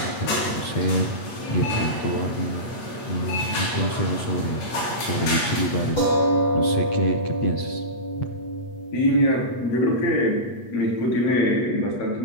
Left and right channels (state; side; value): late; right; 8.4 ms